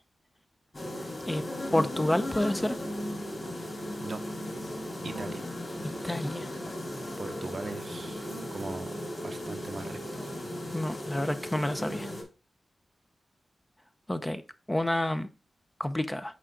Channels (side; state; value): both; normal; correlation 0.97